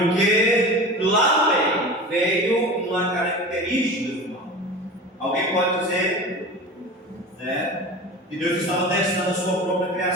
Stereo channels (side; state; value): both; normal; correlation 0.33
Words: lá no meio veio uma característica do mal. Alguém pode dizer, que Deus estava testando a sua própria